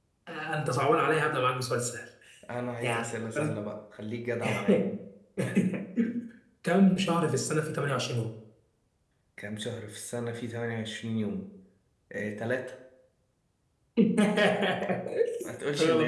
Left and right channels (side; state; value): both; identical; correlation 1.00